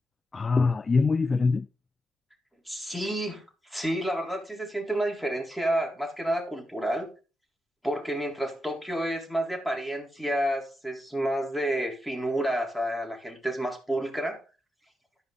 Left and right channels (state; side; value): normal; both; correlation 0.87